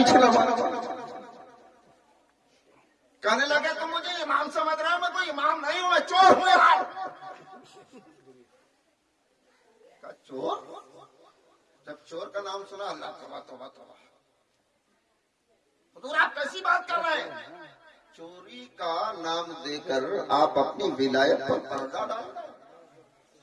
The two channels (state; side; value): identical; both; correlation 1.00